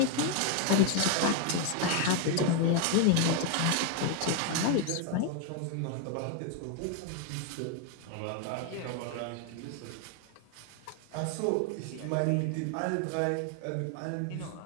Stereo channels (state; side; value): different; both; correlation 0.01